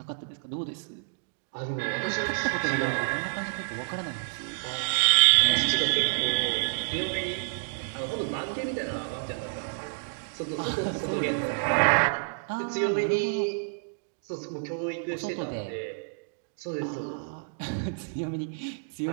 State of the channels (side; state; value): left; silent; digital silence